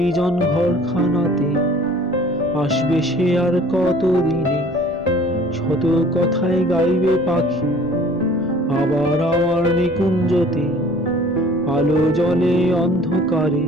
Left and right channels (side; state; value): both; normal; correlation 0.50